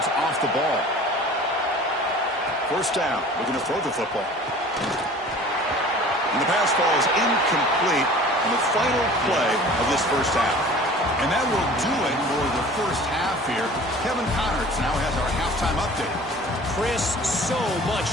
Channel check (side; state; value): both; normal; correlation 0.45